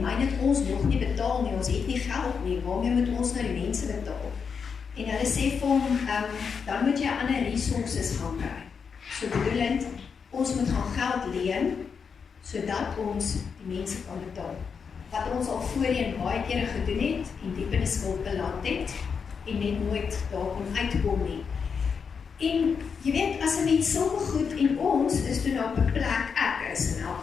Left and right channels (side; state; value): right; quieter; 6.1 dB